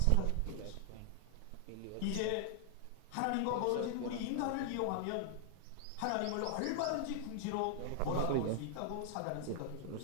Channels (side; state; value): both; different; correlation 0.00